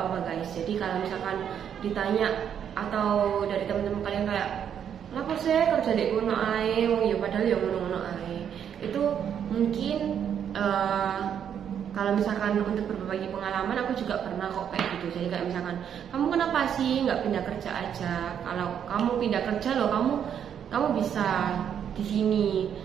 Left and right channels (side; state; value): left; quieter; 8.7 dB